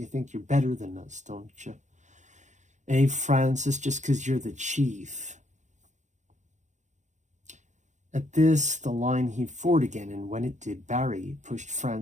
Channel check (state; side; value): late; left; 0.35 ms